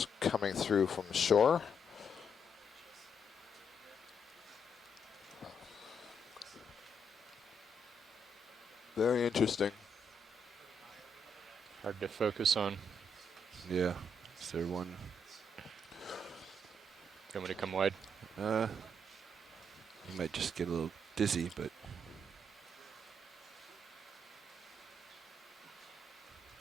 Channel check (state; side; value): normal; both; correlation 0.76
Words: coming through from shore. Very interesting. hard to focus on. Yeah. Is there one? You want me to come wide? You might just get a little dizzy, but